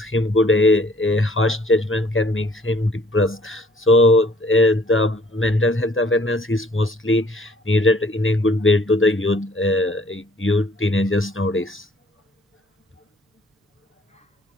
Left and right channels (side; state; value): both; normal; correlation 0.59